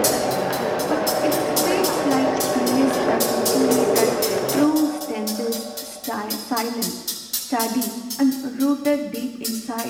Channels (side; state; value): both; identical; correlation 1.00